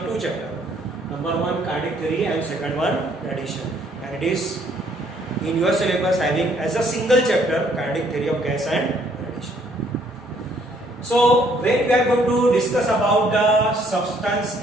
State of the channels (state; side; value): normal; both; correlation 0.65